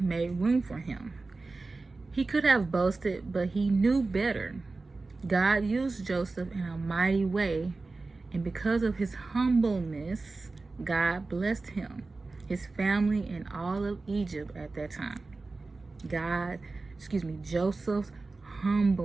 made room for him. He could have boasted, but he knew better. God used Joseph in a mighty way, and because of his humbleness, God blessed him, his family, and all of Egypt at that time. Joseph's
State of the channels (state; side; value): quieter; left; 3.6 dB